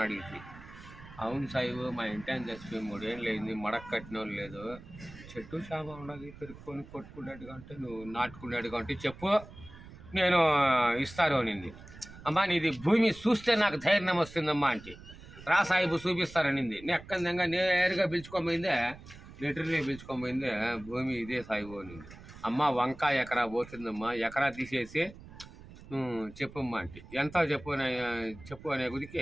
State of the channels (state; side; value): noise; right; rumble, 17 dB below the sound